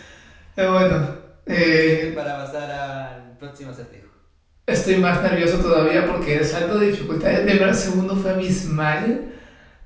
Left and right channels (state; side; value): identical; both; correlation 1.00